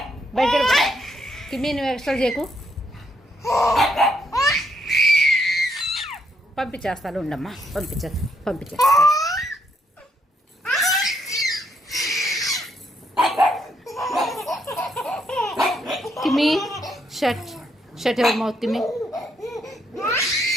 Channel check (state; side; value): normal; both; correlation 0.75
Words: బయటకు వెళ్ళిపో. కిమ్మి నువ్వు ఎక్స్ట్రా చేయకు. పంపించేస్తాను ఉండమ్మా పంపించేస్తా. కిమ్మి షట్ యువర్ మౌత్ కిమ్మి.